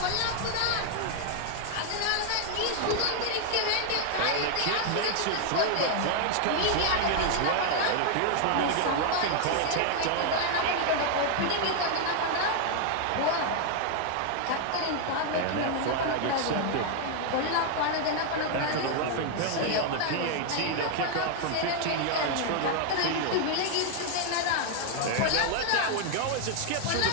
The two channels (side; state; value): both; different; correlation 0.00